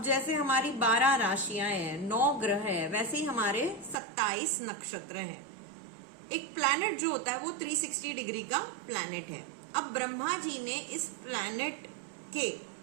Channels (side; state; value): left; drops out; at 4.0 s